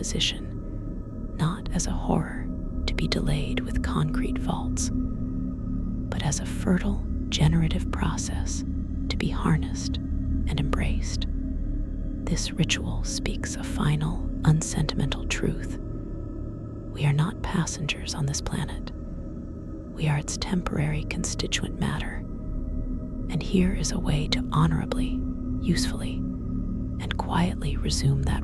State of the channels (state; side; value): identical; both; correlation 1.00